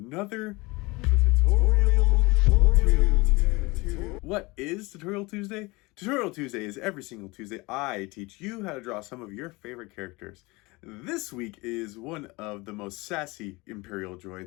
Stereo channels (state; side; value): quieter; right; 23.9 dB